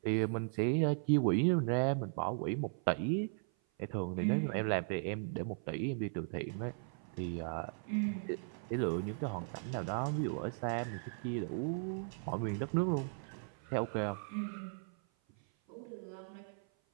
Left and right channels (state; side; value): silent; left; 53 dB below the other